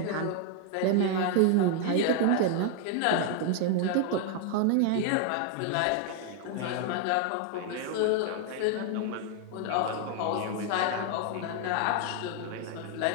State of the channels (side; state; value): both; different; correlation 0.00